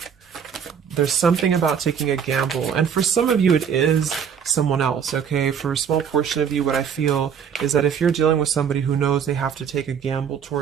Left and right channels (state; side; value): quieter; left; 7.5 dB